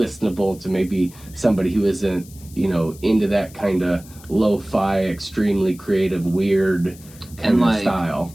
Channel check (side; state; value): left; noise; hiss, 22 dB below the sound